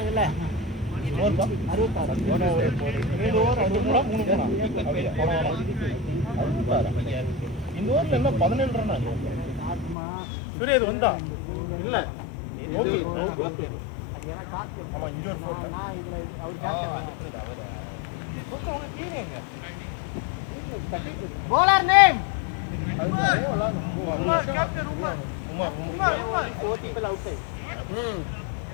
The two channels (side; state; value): right; drops out; at 10.0 s